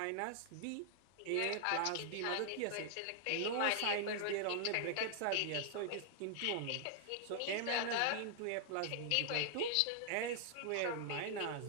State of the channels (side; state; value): both; different; correlation -0.01